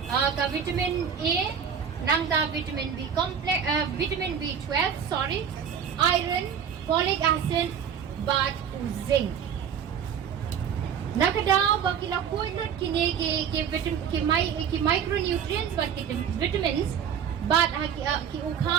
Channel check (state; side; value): quieter; left; 7.9 dB